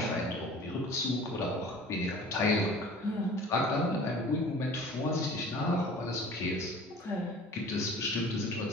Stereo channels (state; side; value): normal; both; correlation 0.44